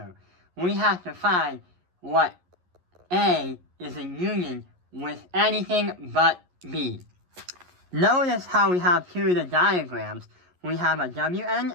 We have to find what A is in union with anything but B. Notice how we have 2 of the diagrams. We have a W and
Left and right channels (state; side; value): late; left; 11 ms